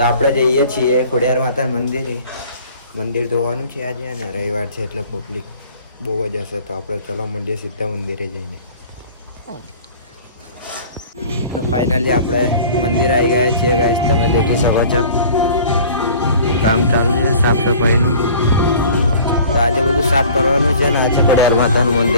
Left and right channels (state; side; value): inverted; both; correlation -0.47